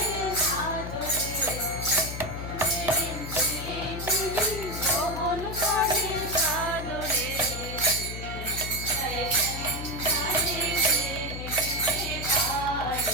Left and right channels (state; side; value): noise; left; hum, 7 dB below the sound